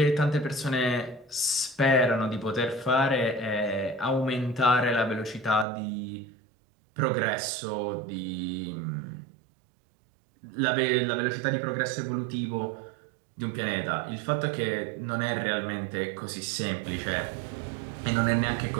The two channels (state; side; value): drops out; left; at 5.7 s